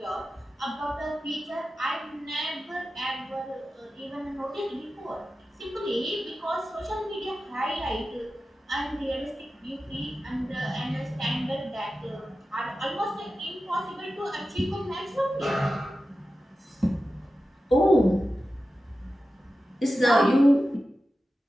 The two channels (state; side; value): normal; both; correlation 0.93